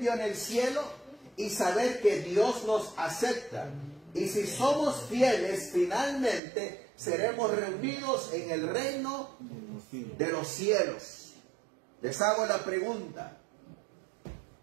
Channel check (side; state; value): left; drops out; at 6.4 s